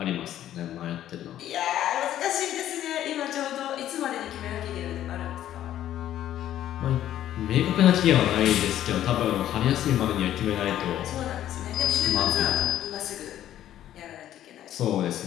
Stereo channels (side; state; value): right; quieter; 12.0 dB